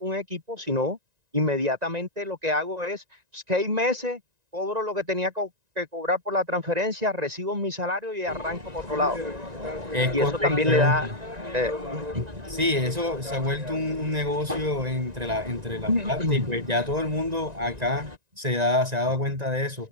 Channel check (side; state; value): left; late; 1.9 ms